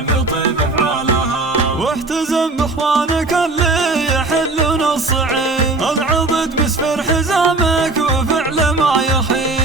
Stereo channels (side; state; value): left; quieter; 3.3 dB